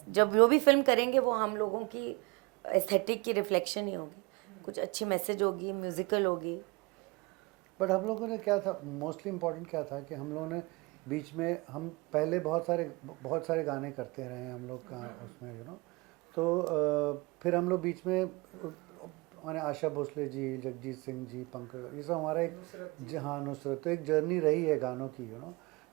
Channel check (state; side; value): quieter; left; 25.5 dB